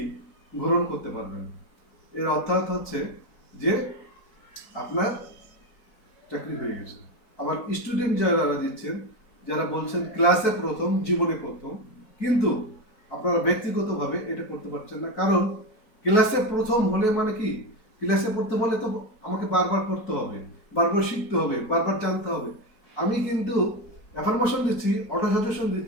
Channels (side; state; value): right; late; 4.6 ms